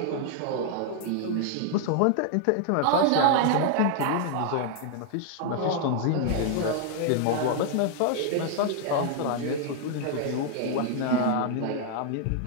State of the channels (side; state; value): both; different; correlation 0.00